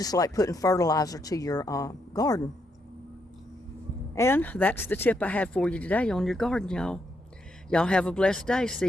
like putting fertilizer to your garden. And that's the tip I had for you today on your garden, y'all. Y'all have a blessed day.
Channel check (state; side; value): normal; both; correlation 0.78